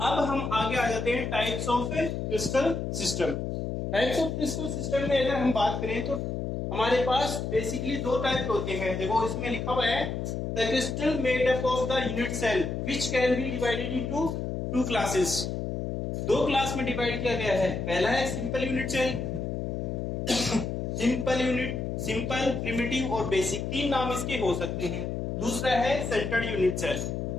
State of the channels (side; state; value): left; noise; hum, 3 dB below the sound